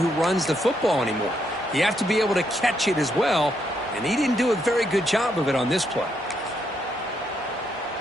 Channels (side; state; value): both; normal; correlation 0.77